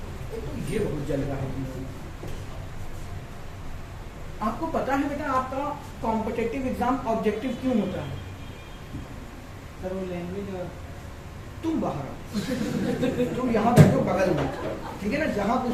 ये बहुत जल रहा है। आपको पता है बेटा आपका कॉम्पिटिटिव एग्जाम ऑब्जेक्टिव क्यों होता है, सर वो लैंग्वेज, तुम बाहर तुम यहाँ बैठो बगल में, ठीक है ना, जहां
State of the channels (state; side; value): identical; both; correlation 1.00